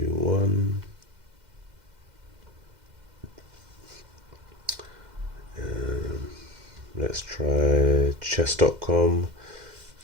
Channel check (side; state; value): left; late; 2.1 ms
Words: 1. Let's try chess.com.